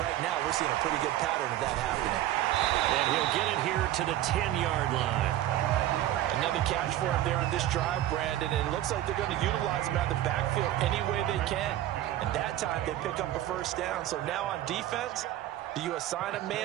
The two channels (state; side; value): quieter; left; 13.5 dB